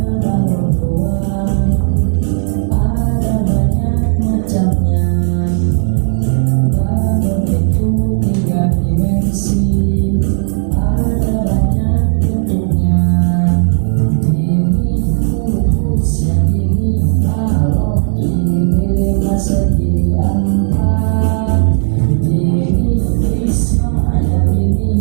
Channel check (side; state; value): left; silent; digital silence